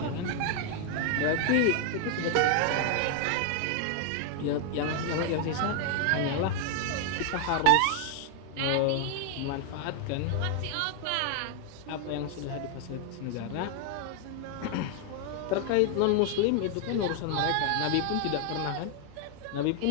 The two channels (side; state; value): both; different; correlation 0.00